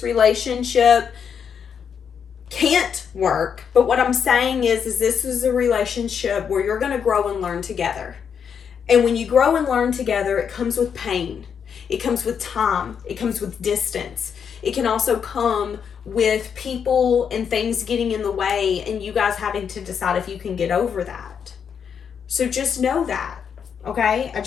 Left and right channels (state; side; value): quieter; right; 7.3 dB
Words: relationship can't work, but what I'm saying is this is a relationship where you're going to grow and learn together. And when you grow and learn together, it comes with pain. It comes with time. It comes with distance. It can also come with people and things getting in the way and you guys having to decide if you can get over that. So just know that, okay? I